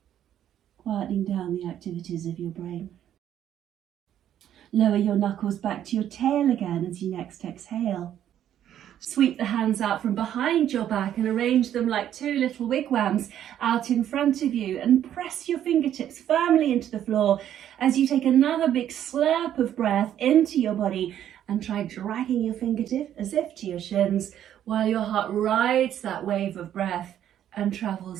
quietening down the activities of your brain. Lower your knuckles back to your tail again as you next exhale. Sweep the hands out from behind your back and arrange them like two little wigwams out in front of you, and press your fingertips firmly into the floor as you take another big slurp of breath into your body and try dragging your fingertip as if to your shins while your heart rides that wave of breath and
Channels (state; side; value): quieter; left; 10.7 dB